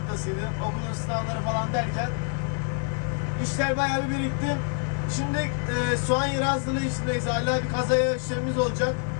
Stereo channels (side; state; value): right; quieter; 39.9 dB